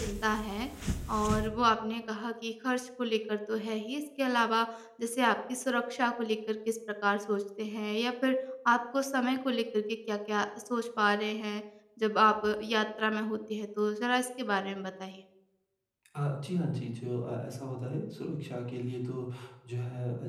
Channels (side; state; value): both; identical; correlation 1.00